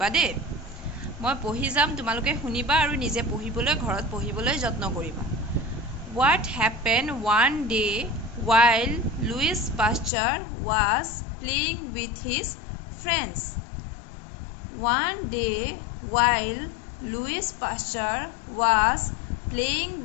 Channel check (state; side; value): drops out; right; at 10.1 s